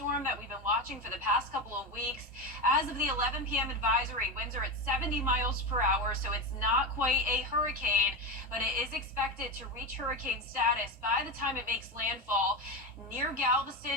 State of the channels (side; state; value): both; normal; correlation 0.18